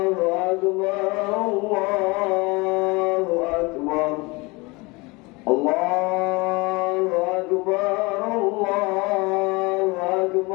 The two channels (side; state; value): right; quieter; 25.2 dB